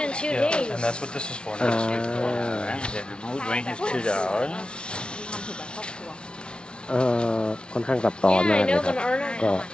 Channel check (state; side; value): late; right; 0.056 ms